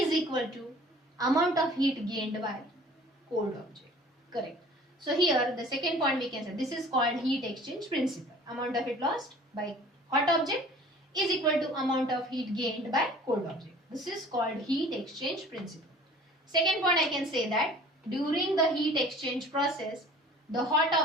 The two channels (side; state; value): both; normal; correlation 0.48